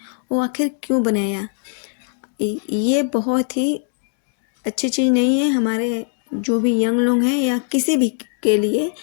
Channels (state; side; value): silent; right; 56 dB below the other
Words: वो आखिर क्यों बनाया। ये बहुत ही अच्छी चीज़ नहीं है हमारे जो भी यंग लोग हैं या किसी भी के लिए।